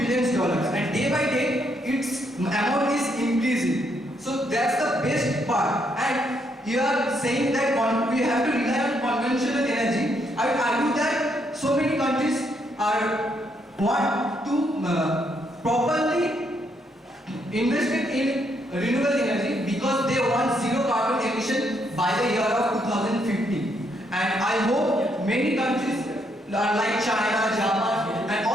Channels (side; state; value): both; normal; correlation 0.74